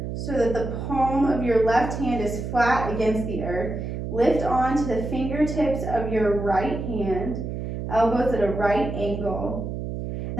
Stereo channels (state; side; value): noise; right; hum, 5 dB below the sound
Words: so that the palm of your left hand is flat against the earth. Lift onto the fingertips of your right hand, elbows at a right angle.